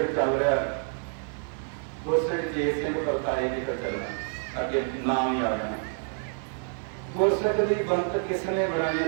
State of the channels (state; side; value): silent; left; 59 dB below the other